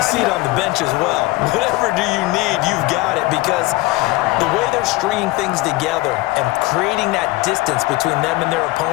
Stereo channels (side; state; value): right; quieter; 20.5 dB